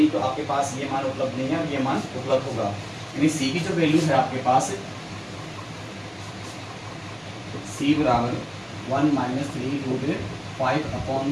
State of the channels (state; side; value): identical; both; correlation 1.00